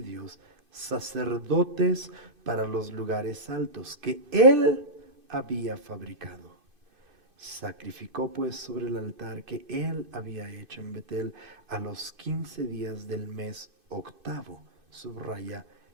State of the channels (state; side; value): late; left; 2.5 ms